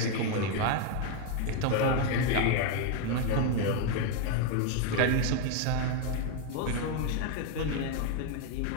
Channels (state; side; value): different; both; correlation 0.01